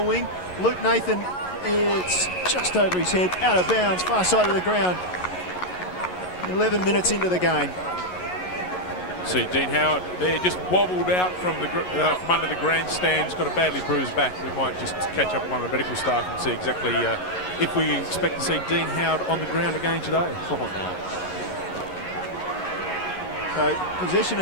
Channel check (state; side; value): late; right; 11 ms